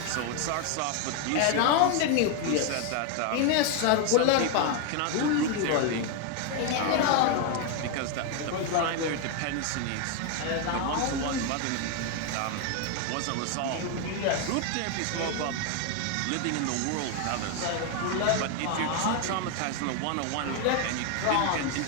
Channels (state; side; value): different; both; correlation 0.01